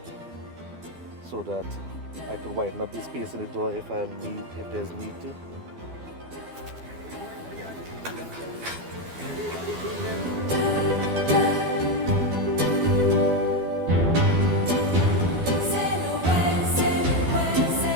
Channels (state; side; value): late; left; 12 ms